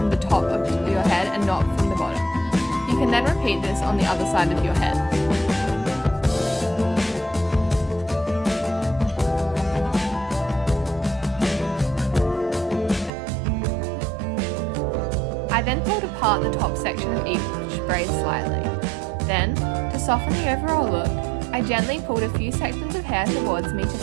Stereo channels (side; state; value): left; drops out; at 13.1 s